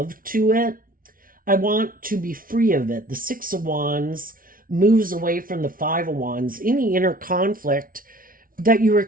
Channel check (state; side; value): late; left; 0.41 ms